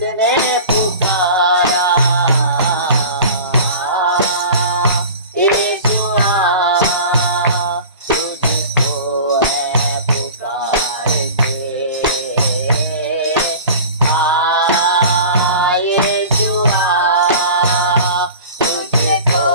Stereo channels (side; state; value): both; inverted; correlation -0.38